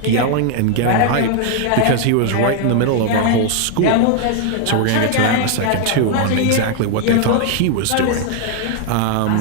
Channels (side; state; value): both; different; correlation 0.00